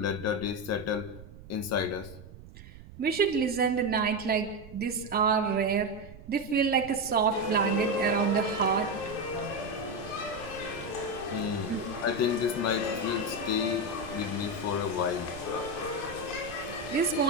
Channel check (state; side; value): noise; right; rumble, 17 dB below the sound